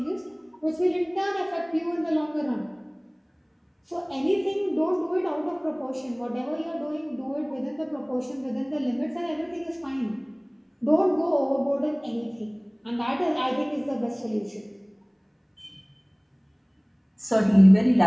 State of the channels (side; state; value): both; identical; correlation 1.00